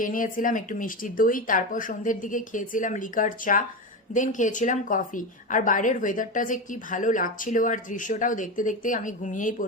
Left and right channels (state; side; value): normal; both; correlation 0.19